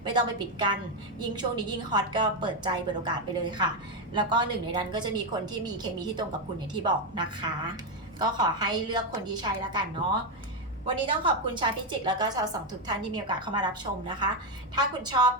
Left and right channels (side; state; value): both; normal; correlation 0.07